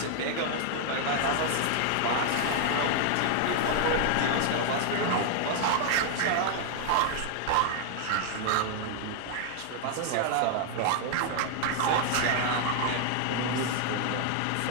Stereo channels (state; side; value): different; both; correlation 0.00